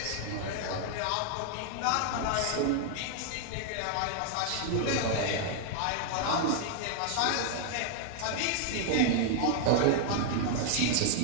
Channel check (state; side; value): different; both; correlation 0.00